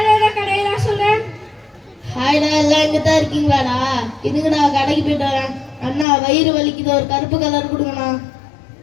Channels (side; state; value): right; drops out; at 6.1 s